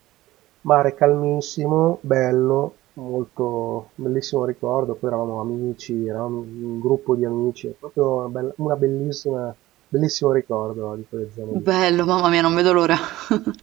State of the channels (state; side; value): quieter; left; 16.7 dB